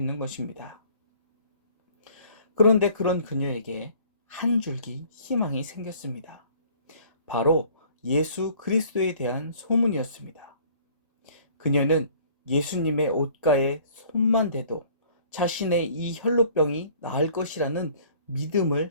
것입니다. 그런데 그런 그녀에게 한 줄기 희망이 생겼습니다. 바로 예수 그리스도에 대한 소문이었습니다. 그녀는 예수님의 옷가에 손만 대도 자신의 이 혈루병이 나을 것이라는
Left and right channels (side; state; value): both; inverted; correlation -0.54